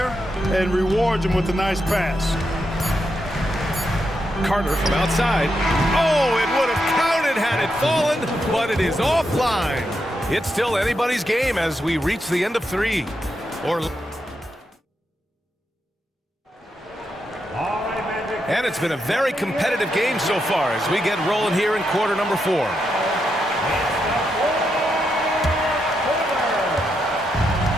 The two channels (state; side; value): normal; both; correlation 0.83